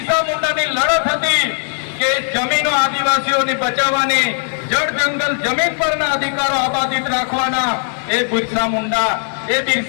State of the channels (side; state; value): right; silent; 60 dB below the other